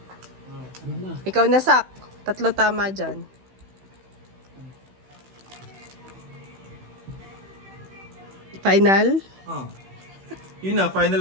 Ano na? Ikaw na, Sak. Tatlo tama dyan. Final? Oh. Yun na, final.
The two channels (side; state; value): left; late; 16 ms